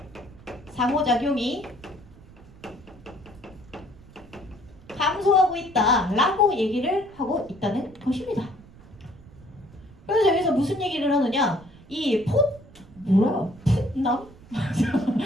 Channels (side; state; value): right; noise; rumble, 22 dB below the sound